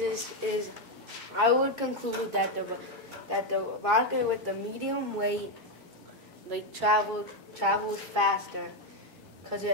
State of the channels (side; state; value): both; normal; correlation 0.06